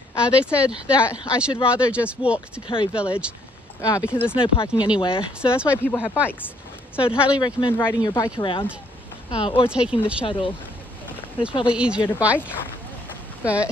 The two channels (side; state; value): both; normal; correlation 0.67